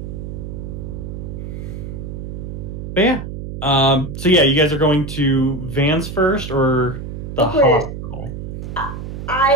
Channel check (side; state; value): right; noise; hum, 8 dB below the sound